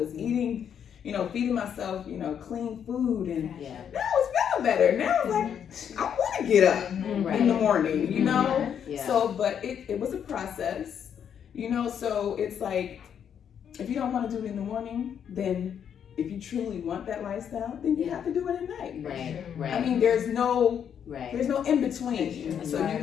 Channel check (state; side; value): quieter; right; 8.4 dB